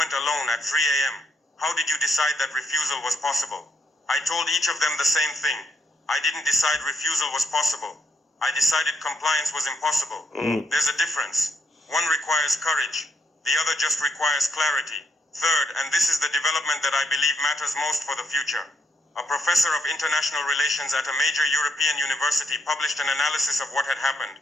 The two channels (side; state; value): both; normal; correlation 0.75